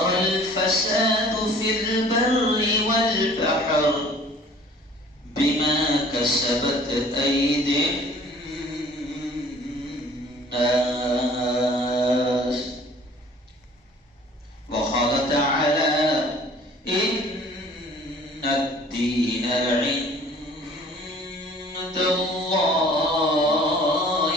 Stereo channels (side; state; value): both; normal; correlation 0.51